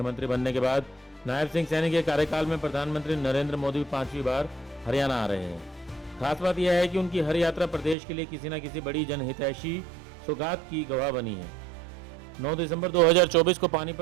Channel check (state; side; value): drops out; left; at 8.0 s